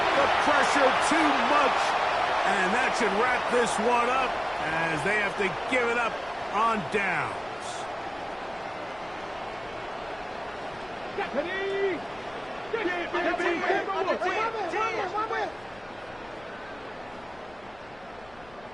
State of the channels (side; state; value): left; noise; rumble, 25 dB below the sound